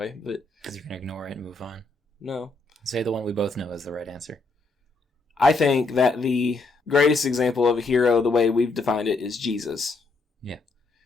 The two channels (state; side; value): quieter; right; 3.5 dB